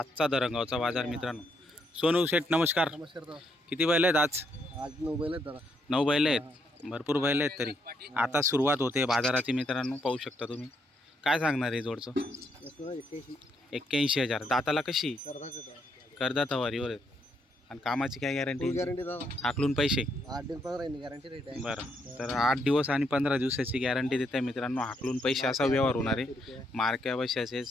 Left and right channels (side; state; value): both; normal; correlation 0.75